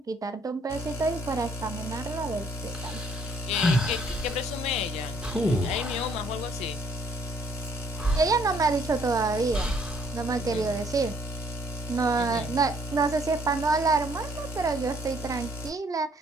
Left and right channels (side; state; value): both; normal; correlation 0.64